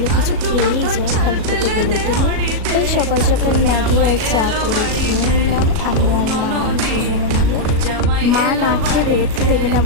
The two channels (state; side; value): late; left; 37 ms